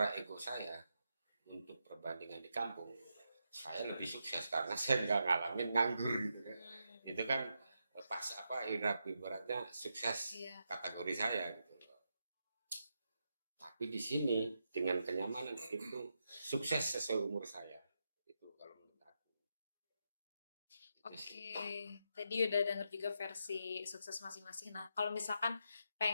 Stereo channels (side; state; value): both; inverted; correlation -0.84